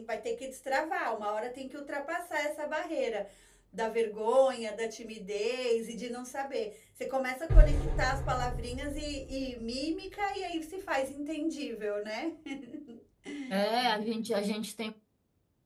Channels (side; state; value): both; identical; correlation 1.00